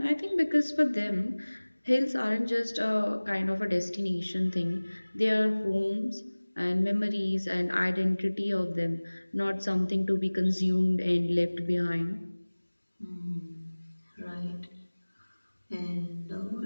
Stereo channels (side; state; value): both; inverted; correlation -1.00